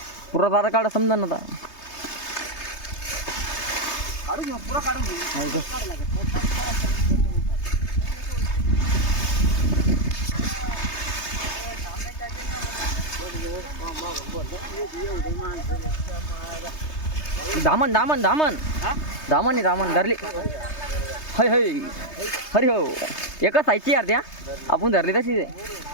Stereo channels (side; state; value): right; late; 3.3 ms